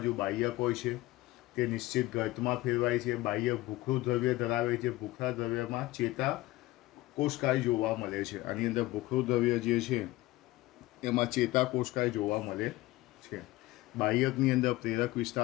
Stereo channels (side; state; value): right; quieter; 18.4 dB